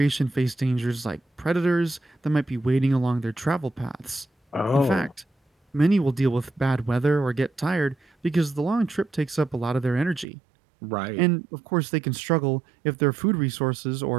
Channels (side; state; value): left; drops out; at 10.2 s